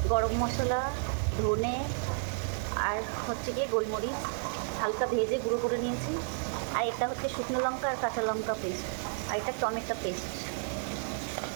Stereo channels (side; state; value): left; silent; digital silence